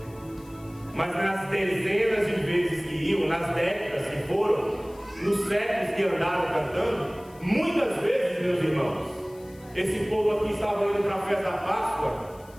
mas nas dezenas de vezes que iam, nas décadas que foram, nos séculos que andaram cantando, muitas vezes, meus irmãos, esse povo aqui estava indo para a festa da Páscoa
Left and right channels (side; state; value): left; noise; hiss, 26 dB below the sound